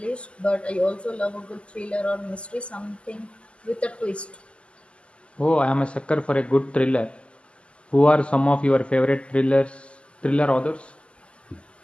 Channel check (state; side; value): late; right; 0.054 ms